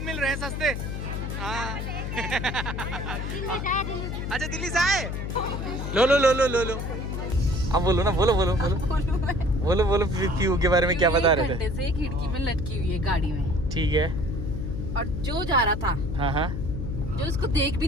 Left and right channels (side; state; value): left; noise; hum, 4 dB below the sound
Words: मिल रहे हैं सस्ते। हाँ अच्छा दिल्ली से आए? लो लो लो लो लो लो। अब बोलो ना, बोलो बोलो बोलो बोलो बोलो पीयू के बारे में क्या बता रहे थे? से खिड़की में लटकी हुई है गाड़ी में। ठीक है। और जो जा रहा था, हाँ हाँ, जो उसको देख